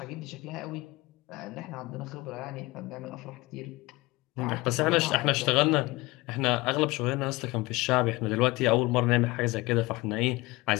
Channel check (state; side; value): quieter; right; 21.9 dB